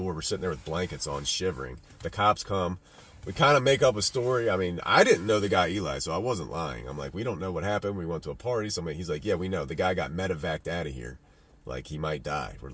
We're sitting there with blankets on, shivering. The cops come. We kind of make up a story. I mean, I didn't know the guy Eli, so I wasn't lying. I'm like, we don't know what happened. We went to a party. He's like, yeah, we know. The guy got medevaced out of here. Like, he might die. We're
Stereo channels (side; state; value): both; identical; correlation 1.00